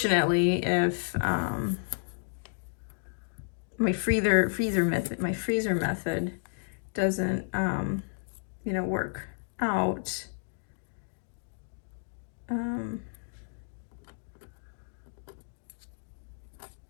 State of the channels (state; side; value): silent; right; digital silence